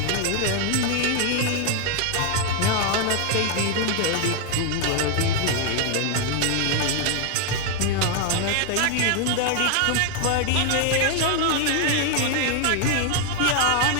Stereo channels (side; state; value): both; different; correlation 0.01